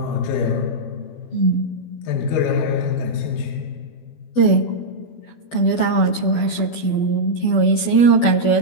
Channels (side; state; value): right; late; 12 ms